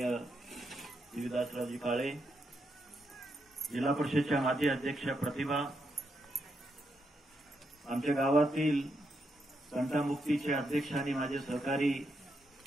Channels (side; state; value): both; normal; correlation 0.81